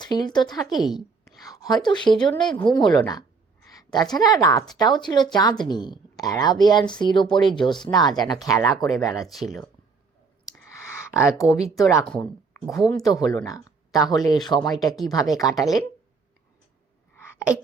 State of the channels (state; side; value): quieter; left; 4.7 dB